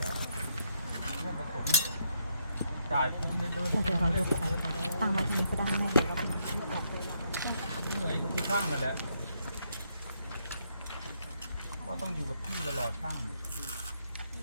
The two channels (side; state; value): both; inverted; correlation -0.75